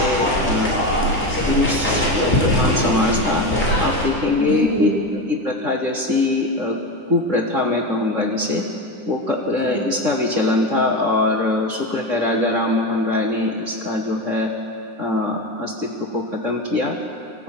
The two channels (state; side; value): late; left; 9.9 ms